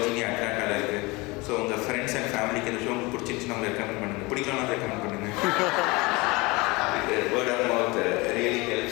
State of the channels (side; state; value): right; quieter; 24.2 dB